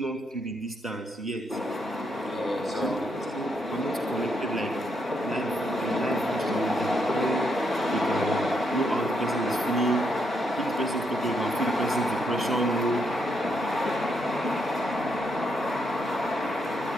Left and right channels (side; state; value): both; normal; correlation 0.77